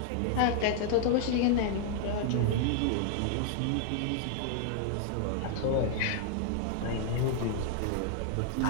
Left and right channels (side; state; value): both; different; correlation 0.00